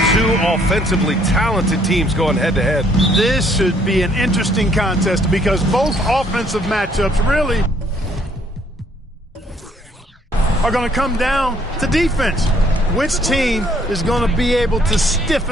Two offensively talented teams going head-to-head. This should be an interesting contest because both offensive matchups really are going to come down to defense. Which team is going to be able to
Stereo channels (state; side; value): normal; both; correlation 0.65